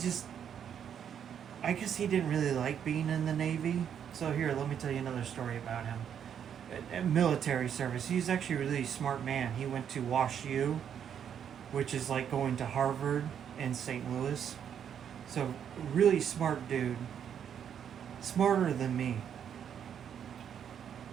I guess he didn't really like being in the Navy. So here, let me tell you another story about him. Military service. He's actually a really smart man. He went to Wash U, which is like going to Harvard in St. Louis. So really smart dude. Smarter than me.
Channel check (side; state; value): left; quieter; 8.6 dB